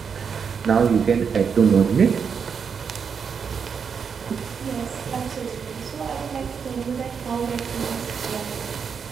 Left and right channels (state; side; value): quieter; left; 6.4 dB